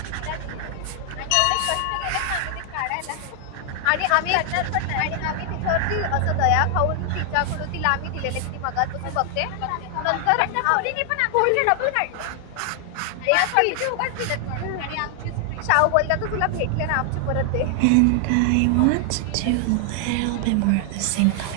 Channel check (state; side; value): different; both; correlation 0.00